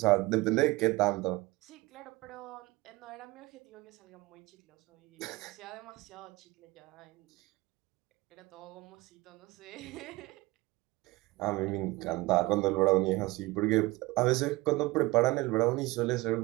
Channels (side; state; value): left; quieter; 21.4 dB